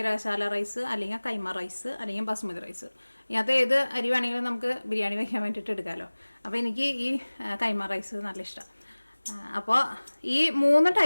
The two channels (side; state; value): both; inverted; correlation -1.00